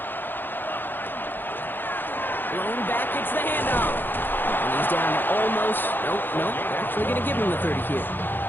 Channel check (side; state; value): right; late; 0.095 ms